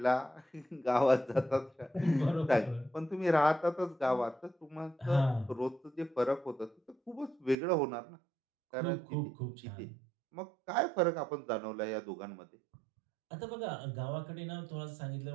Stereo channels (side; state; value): left; drops out; at 7.6 s